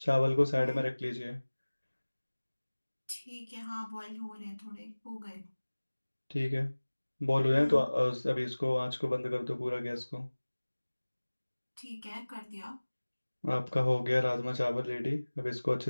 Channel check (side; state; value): both; inverted; correlation -1.00